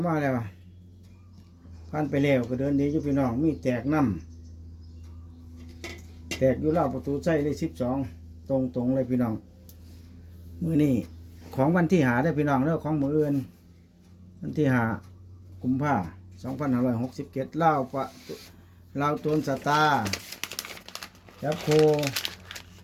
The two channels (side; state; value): both; identical; correlation 1.00